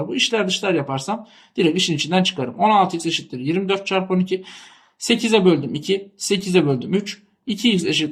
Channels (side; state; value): both; identical; correlation 1.00